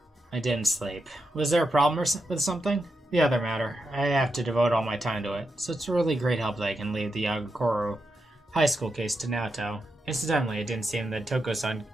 I didn't sleep. Was there a problem with something? The other matter. I have to devote all my time to it, so it's a really great help that I can leave the Agakoro high school case to Naoto. Incidentally, it didn't seem that Toko-san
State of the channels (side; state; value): both; normal; correlation 0.86